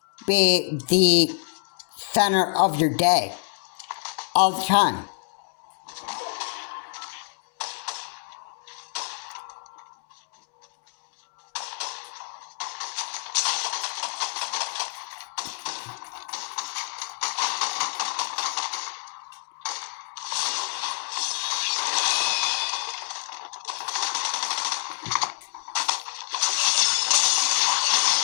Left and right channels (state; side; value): silent; right; digital silence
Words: be the center of your day all the time.